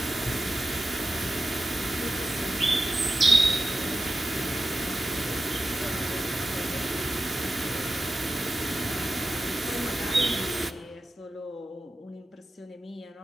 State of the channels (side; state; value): both; normal; correlation 0.93